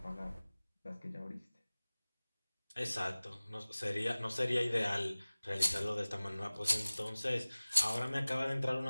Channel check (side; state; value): both; inverted; correlation -0.99